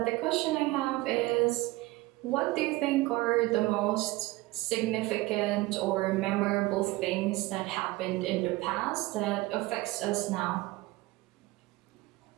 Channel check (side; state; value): left; quieter; 20.0 dB